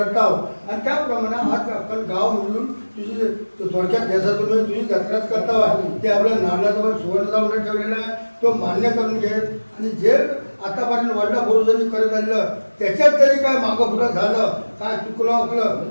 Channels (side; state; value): both; inverted; correlation -1.00